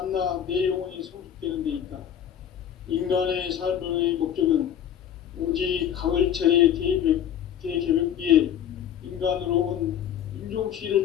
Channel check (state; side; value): quieter; right; 9.6 dB